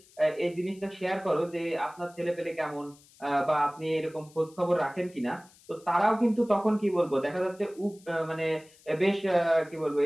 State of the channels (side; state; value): left; noise; hiss, 27 dB below the sound